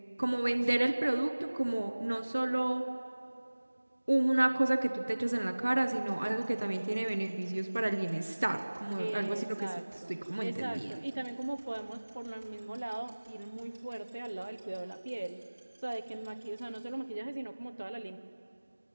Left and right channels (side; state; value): both; inverted; correlation -1.00